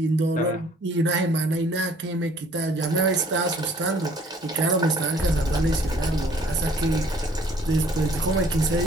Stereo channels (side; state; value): both; normal; correlation 0.57